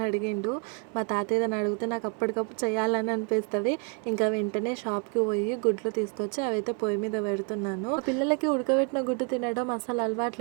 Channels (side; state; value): left; quieter; 35.8 dB